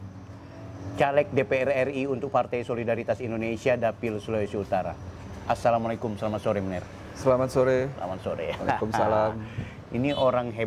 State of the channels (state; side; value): identical; both; correlation 1.00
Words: caleg DPR RI untuk Partai Solidaritas Indonesia Dapil Sulawesi Utara. Assalamualaikum, selamat sore Mener. Selamat sore. Selamat sore. Waalaikumsalam. Ini orang